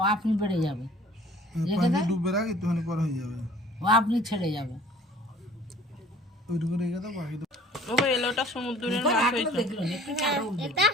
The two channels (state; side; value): normal; both; correlation 0.51